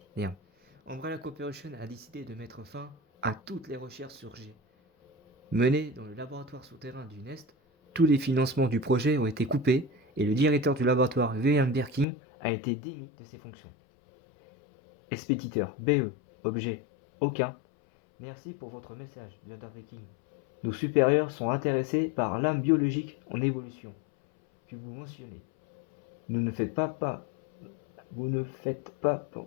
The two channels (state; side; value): drops out; right; at 12.1 s